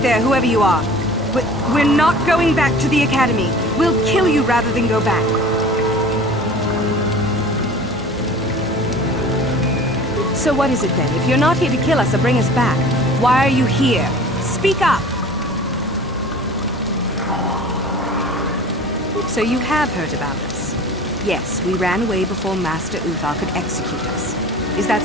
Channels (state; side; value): normal; both; correlation 0.42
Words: whoever you are. We're not going back to the academy. We'll kill you rather than go back. So what is it then? If you're not here to kill us or bring us back, why are you here? Speak up! So you have heard about us. Yes, we ran away before Master Uthar could execute us. Is that